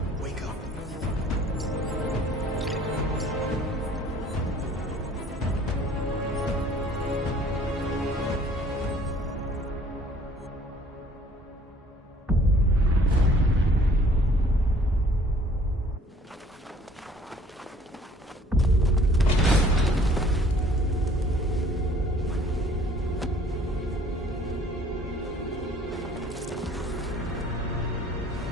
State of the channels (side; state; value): both; normal; correlation 0.55